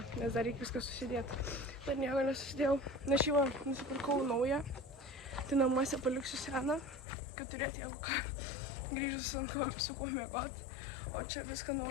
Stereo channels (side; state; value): right; drops out; at 7.1 s